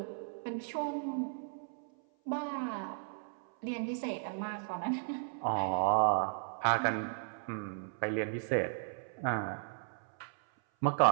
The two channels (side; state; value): left; silent; 54 dB below the other